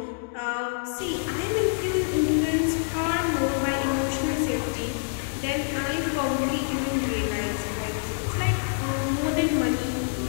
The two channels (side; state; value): right; silent; digital silence